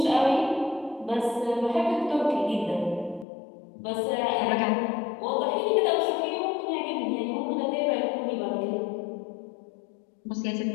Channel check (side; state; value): right; drops out; at 3.2 s